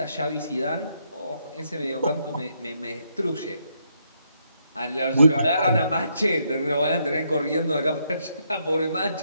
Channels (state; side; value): inverted; both; correlation -0.76